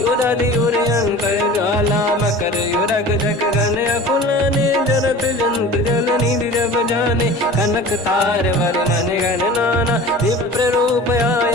उदधि उर अंकर ज्वाला मकर युरग जग गण अकुलाने जरत जंत जल निधि जब जाने कनक तार वर्णन गण नाना विप्र रूप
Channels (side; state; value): both; normal; correlation 0.39